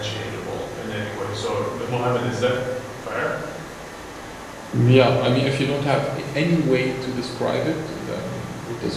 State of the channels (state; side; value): identical; both; correlation 1.00